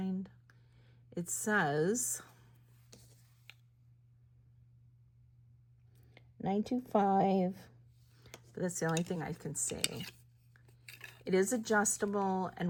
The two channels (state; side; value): identical; both; correlation 1.00